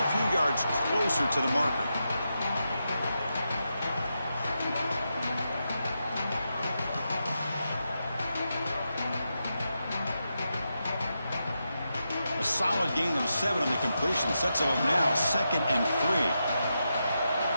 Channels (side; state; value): both; inverted; correlation -0.87